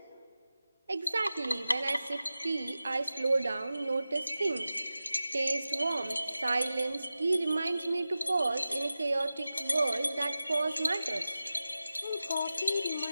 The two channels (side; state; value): both; inverted; correlation -0.95